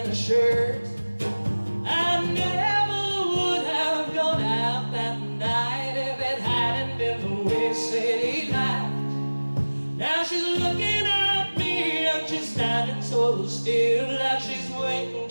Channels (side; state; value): both; inverted; correlation -1.00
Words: a shirt. I never would have gone out that night if it hadn't been the way Sadie laughed. Now she's looking at me and she's standing so still, like she's waiting